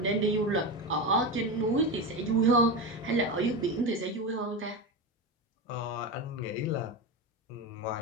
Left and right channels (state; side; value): normal; both; correlation 0.19